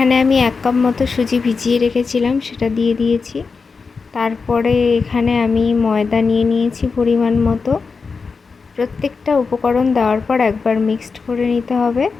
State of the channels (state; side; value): quieter; right; 4.8 dB